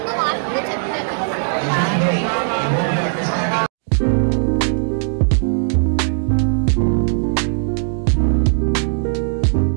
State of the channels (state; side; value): silent; left; 67 dB below the other